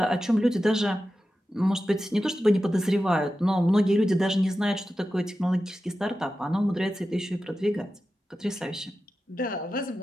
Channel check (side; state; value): both; normal; correlation 0.92